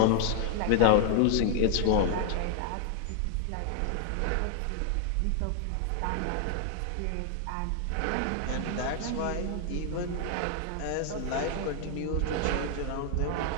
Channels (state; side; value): different; both; correlation 0.00